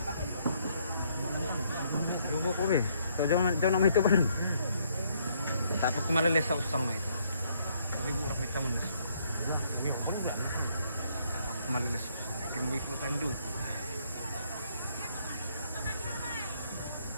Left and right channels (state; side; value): inverted; both; correlation -0.70